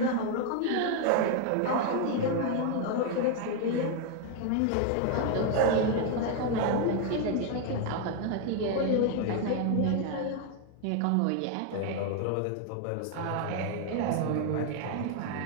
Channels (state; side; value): different; both; correlation 0.00